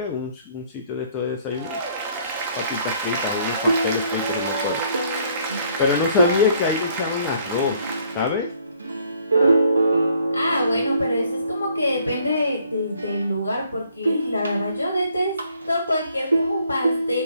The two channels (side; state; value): both; inverted; correlation -0.64